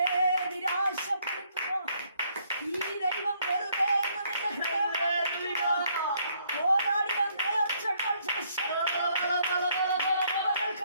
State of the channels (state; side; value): inverted; both; correlation -0.69